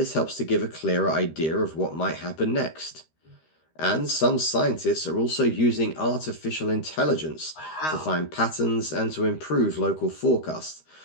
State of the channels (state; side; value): late; right; 13 ms